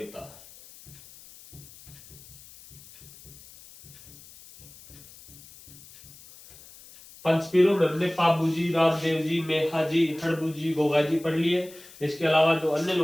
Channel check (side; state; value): left; noise; hiss, 21 dB below the sound